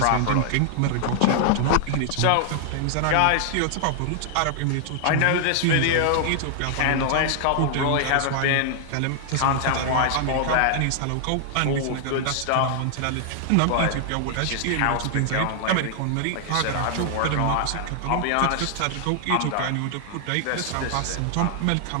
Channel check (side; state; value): both; different; correlation 0.00